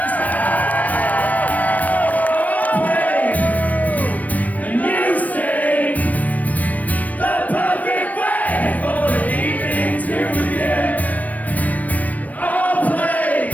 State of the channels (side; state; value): right; late; 0.074 ms